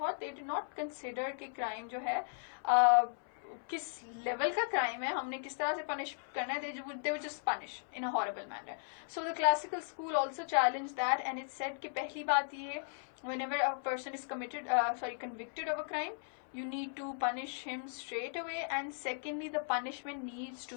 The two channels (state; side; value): silent; right; 53 dB below the other